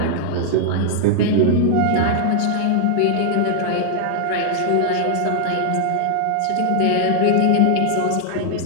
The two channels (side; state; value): both; different; correlation 0.00